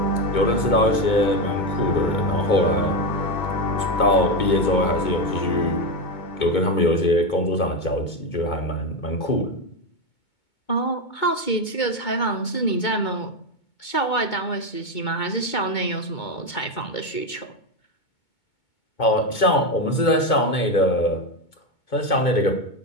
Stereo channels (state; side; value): late; right; 2.2 ms